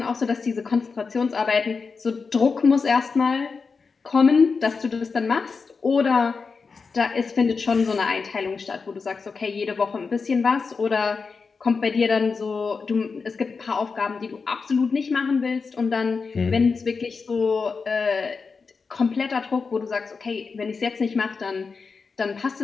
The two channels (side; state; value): right; quieter; 4.9 dB